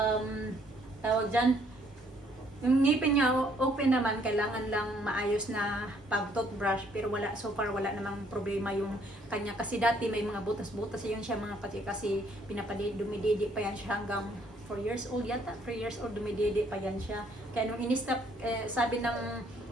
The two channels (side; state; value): both; normal; correlation 0.65